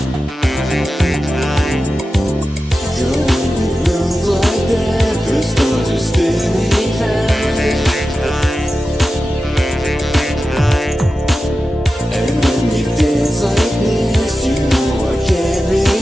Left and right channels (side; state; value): both; normal; correlation 0.93